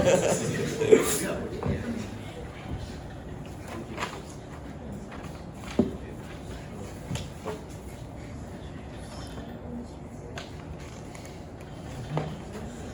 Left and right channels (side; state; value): both; identical; correlation 1.00